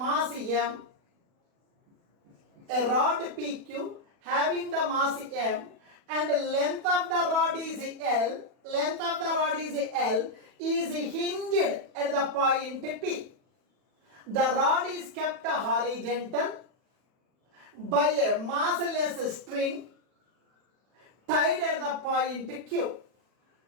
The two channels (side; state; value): left; late; 40 ms